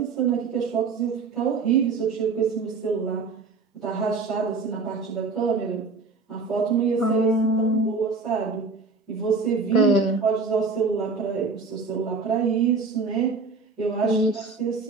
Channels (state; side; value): quieter; left; 4.2 dB